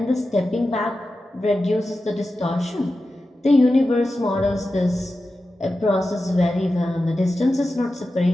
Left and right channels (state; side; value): normal; both; correlation 0.92